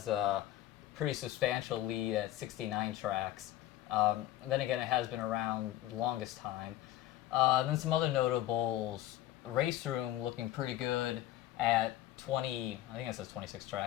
a pretty substantial lead at 69 tracks. Then again, it has been around the longest time. Then some other notables. Race Room looking pretty good at 20, I think it says 26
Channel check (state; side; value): quieter; right; 14.2 dB